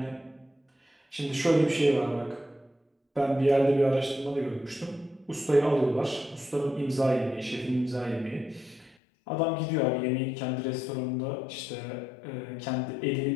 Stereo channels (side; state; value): right; drops out; at 9.0 s